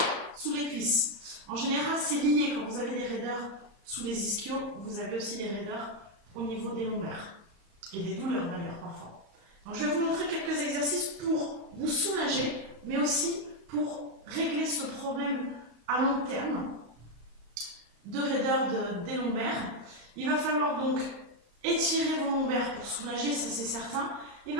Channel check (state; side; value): late; left; 34 ms